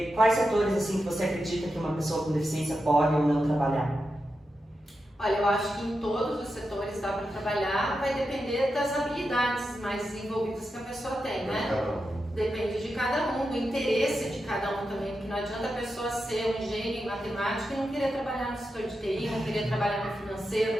quais setores assim que você acredita que uma pessoa com deficiência pode ou não trabalhar? Olha, eu acho que em todos os setores dá para trabalhar, vai depender das habilidades mais desenvolvidas que a pessoa tem, né? Depende de cada um, do interesse de cada um também, porque não adianta a pessoa ser um gênio em matemática e não querer trabalhar no setor de TI, não querer trabalhar no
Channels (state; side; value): normal; both; correlation 0.89